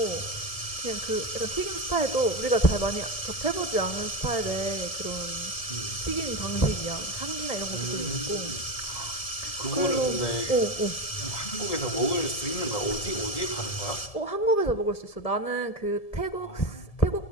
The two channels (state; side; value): late; right; 1.7 ms